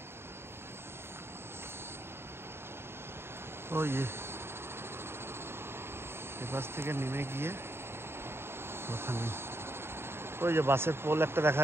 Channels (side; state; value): left; late; 0.12 ms